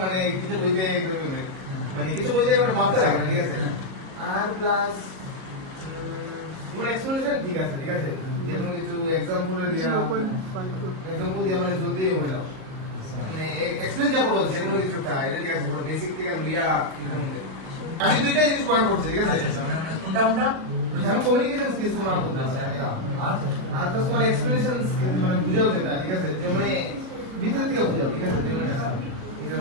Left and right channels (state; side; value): late; left; 37 ms